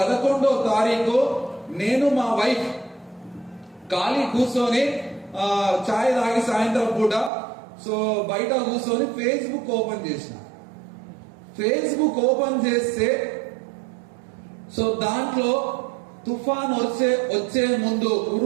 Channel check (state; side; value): drops out; left; at 7.3 s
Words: తారీఖు నేను మా వైఫ్ ఖాళీ కూర్చొని చాయ్ తాగి సాయంత్రం పూట సో బయట కూర్చొని ఫేస్బుక్ ఓపెన్ చేసిన. ఫేస్బుక్ ఓపెన్ చేస్తే సో దాంట్లో తుఫాన్ వచ్చే ముందు